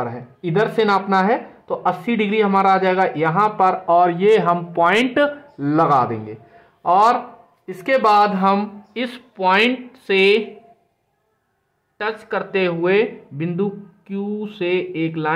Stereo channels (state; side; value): identical; both; correlation 1.00